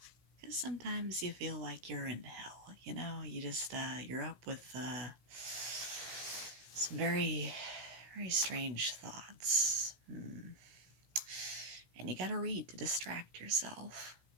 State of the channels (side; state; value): left; late; 16 ms